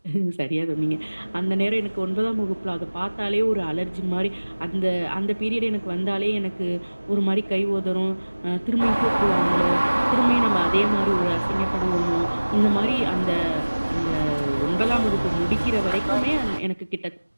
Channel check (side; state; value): both; inverted; correlation -1.00